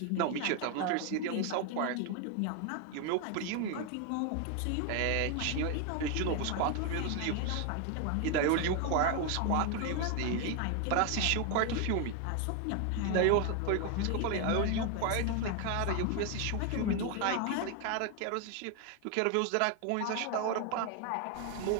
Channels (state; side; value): different; both; correlation 0.01